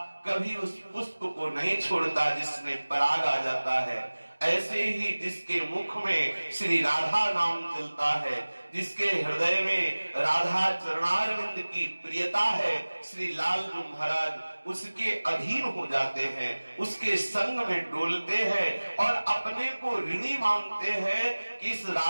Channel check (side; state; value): both; inverted; correlation -1.00